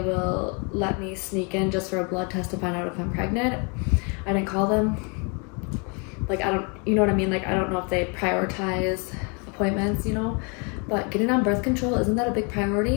will let me sneak in just for a blood test to find out if I'm pregnant. I didn't call them. Like, I don't, you know what I mean? Like, I don't know if they prioritize appointments, you know? But getting on birth control, isn't that a big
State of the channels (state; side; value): quieter; right; 34.4 dB